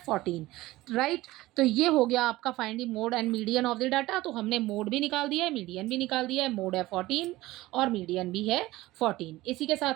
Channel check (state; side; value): quieter; left; 18.0 dB